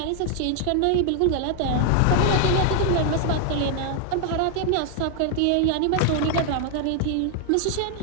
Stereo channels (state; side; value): different; both; correlation 0.00